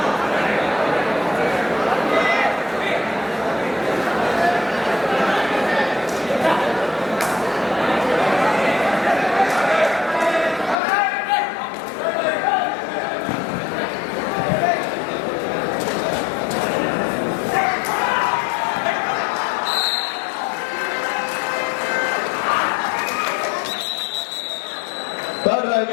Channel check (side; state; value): right; drops out; at 10.8 s